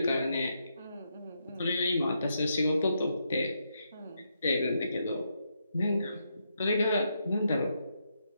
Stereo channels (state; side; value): inverted; both; correlation -0.81